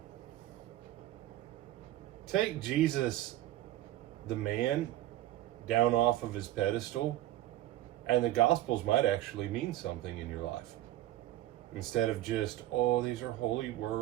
take Jesus, the man, down off of his pedestal, and the Gospels might actually mean something in your life. Instead of just, oh, these are holy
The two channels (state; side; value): quieter; left; 14.7 dB